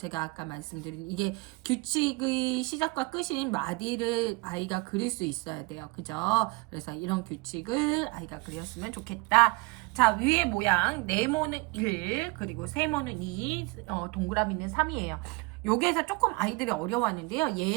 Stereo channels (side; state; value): left; quieter; 26.3 dB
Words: 아까 말씀드린 이게 규칙의 시작과 끝인 마디를 아이가 그릴 수 있어야 돼요. 그죠? 그래서 이런 규칙을 아이가 그렸으면 좋겠다. 자, 위에 모양 네모는 1 그리고 세모는 2 동그라미는 3이에요. 여기에서 조금 아이들이 어려워하는데요.